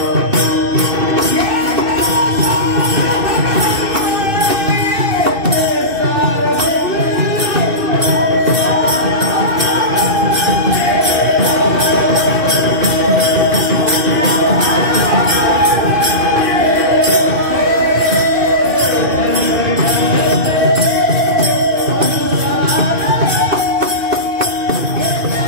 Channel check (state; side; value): late; left; 2.6 ms